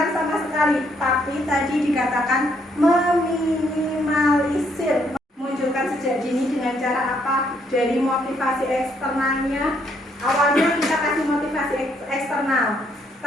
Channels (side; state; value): both; normal; correlation 0.71